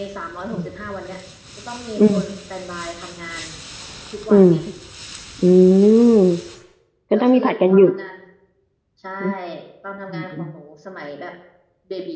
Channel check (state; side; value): identical; both; correlation 1.00